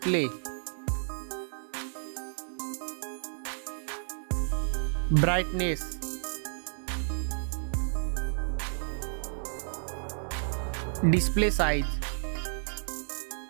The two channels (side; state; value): left; silent; digital silence